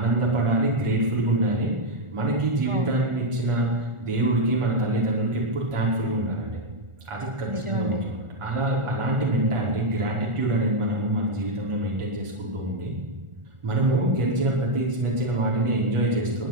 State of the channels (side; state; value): left; late; 1.4 ms